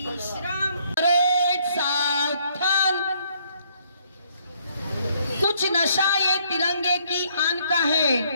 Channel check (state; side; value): inverted; both; correlation -0.67